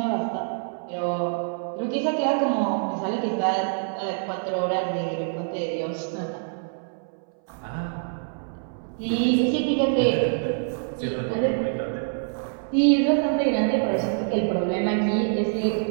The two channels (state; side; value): silent; left; 61 dB below the other